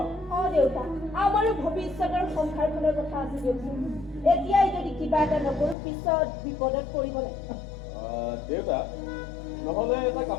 দেউতা আমাৰো ভৱিষ্যতৰ সংসাৰখনৰ কথা আছে দিয়কচোন এতিয়াই যদি কিবা এটা নকৰোঁ পিছত বিপদত পৰিব লাগিব দেউতা নহ'লে এটা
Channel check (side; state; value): right; drops out; at 5.8 s